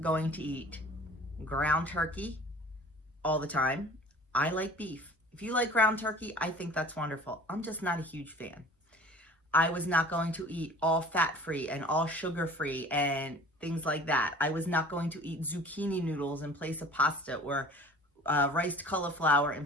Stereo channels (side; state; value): both; normal; correlation 0.45